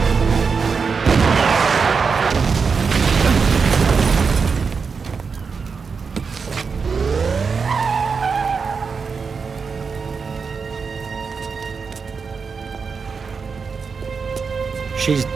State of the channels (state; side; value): quieter; left; 5.3 dB